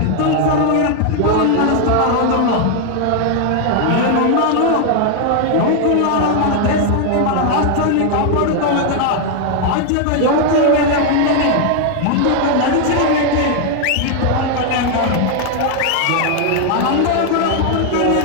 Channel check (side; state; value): both; different; correlation 0.00